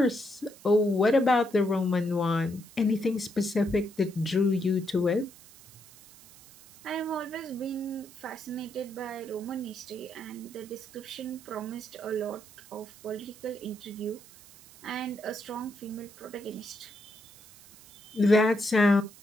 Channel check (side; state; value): right; noise; hiss, 22 dB below the sound